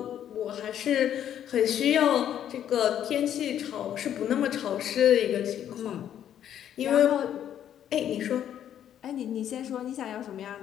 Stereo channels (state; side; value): quieter; right; 10.2 dB